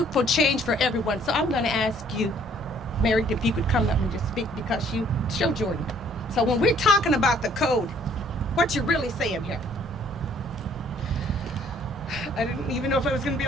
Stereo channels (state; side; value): normal; both; correlation 0.61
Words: change for everyone. So I'm gonna ask you, Mary, if you could come up and just speak, because you show Jordan. So when we're talking about the code, what you're really saying here? I didn't even know if I was going to be